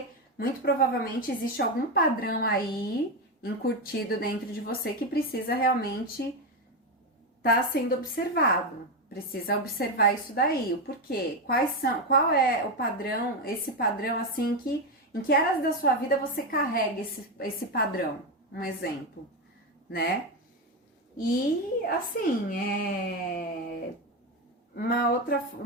muito provavelmente existe algum padrão aí incutido dentro de você que precisa realmente estar sendo observado. Precisa observar isso daí. O porquê? Qual é o padrão, esse padrão assim em que áreas da sua vida você carrega esse padrão? Um exemplo, né? E assim, uma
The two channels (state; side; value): normal; both; correlation 0.11